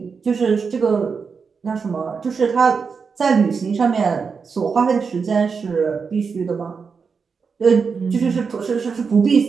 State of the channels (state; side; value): quieter; left; 5.5 dB